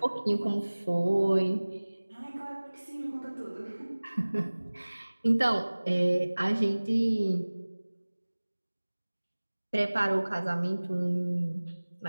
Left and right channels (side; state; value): both; inverted; correlation -1.00